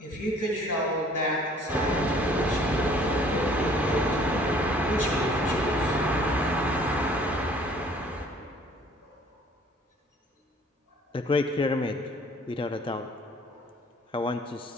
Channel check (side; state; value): both; normal; correlation 0.55